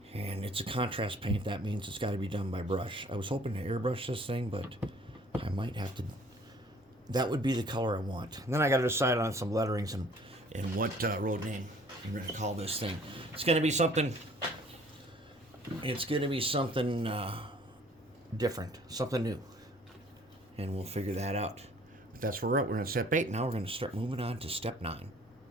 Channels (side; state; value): both; normal; correlation 0.55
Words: And it's a contrast paint. That means it's got to be done by brush. I was hoping to airbrush this thing, but I might have to. That would be the color I want. And then I got to decide on some letterings and what road name I'm going to call this thing. It's going to be something. It's going to be something different, something new, and we'll figure that out. But that's where we're at. We're on step 8. Now we're going to start moving on to step 9.